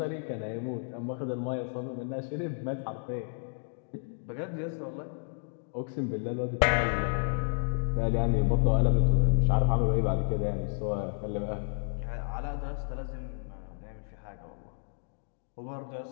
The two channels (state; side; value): silent; right; digital silence